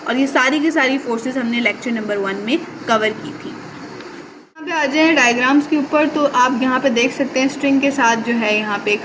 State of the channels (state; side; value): identical; both; correlation 1.00